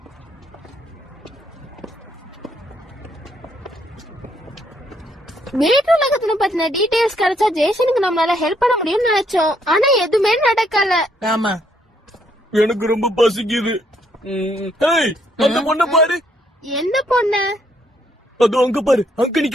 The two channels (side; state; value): both; normal; correlation 0.71